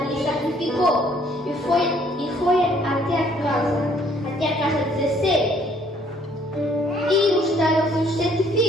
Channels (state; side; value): normal; both; correlation 0.62